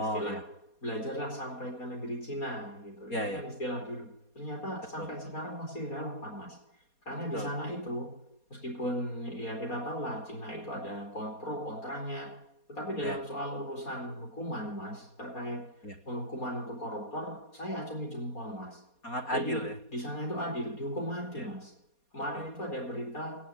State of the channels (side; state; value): right; late; 4.2 ms